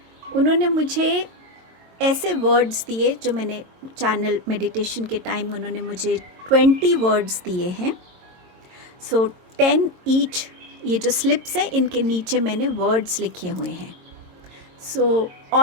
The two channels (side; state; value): left; late; 22 ms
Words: उन्होंने मुझे ऐसे वर्ड्स दिए जो मैंने चैनल मेडिटेशन के टाइम उन्होंने मुझे 20 वर्ड्स दिए हैं। सो 10 ईच। ये जो स्लिप्स हैं इनके नीचे मैंने वर्ड्स लिखे हुए हैं।